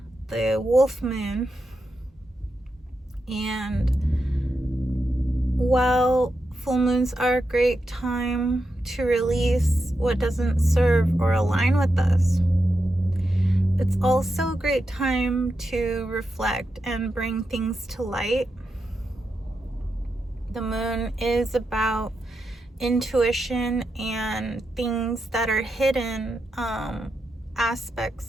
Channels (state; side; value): normal; both; correlation 0.87